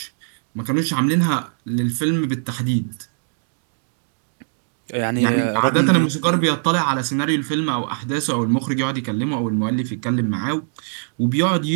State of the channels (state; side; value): silent; left; digital silence